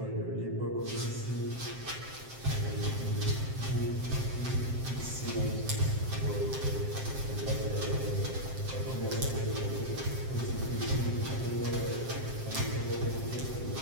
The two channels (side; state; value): left; late; 7.6 ms